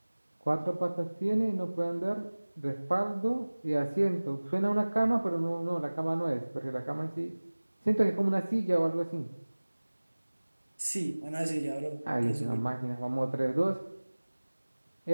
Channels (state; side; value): inverted; both; correlation -1.00